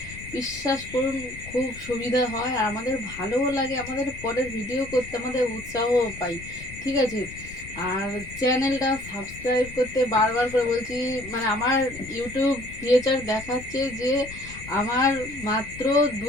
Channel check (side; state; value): left; noise; rumble, 15 dB below the sound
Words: বিশ্বাস করুন খুব সুবিধা হয়, আর আমাদের ভালোও লাগে, আমাদের পরের ভিডিও করতে আমাদের উৎসাহও পাই। ঠিক আছে, আর চ্যানেলটা সাবস্ক্রাইব করতে বারবার করে বলছি। আমার ইউটিউব ফিচার দেখাচ্ছে যে আমার মাত্র